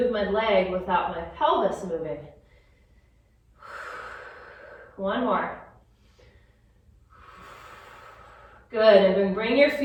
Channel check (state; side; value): identical; both; correlation 1.00